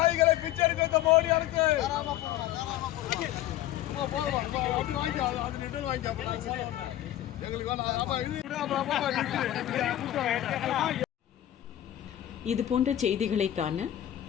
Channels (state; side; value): quieter; right; 13.0 dB